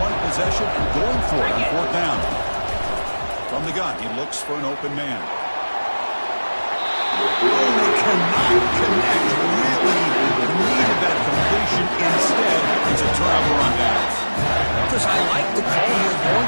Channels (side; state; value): both; inverted; correlation -1.00